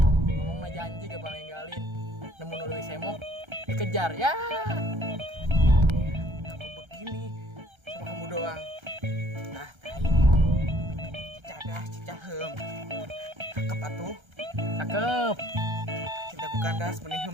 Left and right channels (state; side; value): late; left; 1.3 ms